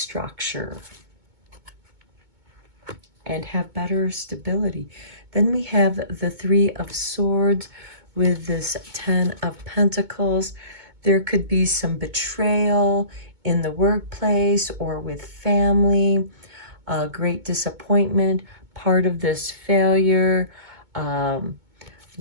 and have better stability. Then we have the Three of Swords with this Ten of Pentacles. There could be some betrayal in the workplace or with family, great disappointment, part of this failure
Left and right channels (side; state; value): left; late; 2.2 ms